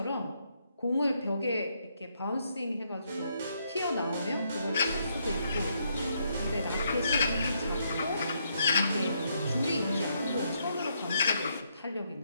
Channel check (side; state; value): both; inverted; correlation -0.76